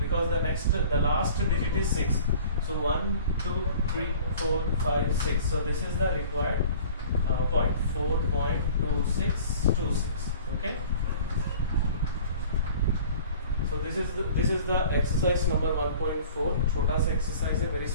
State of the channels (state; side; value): inverted; both; correlation -0.46